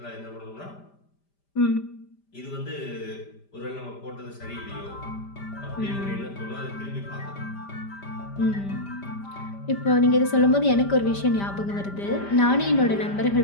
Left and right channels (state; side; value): late; right; 5.0 ms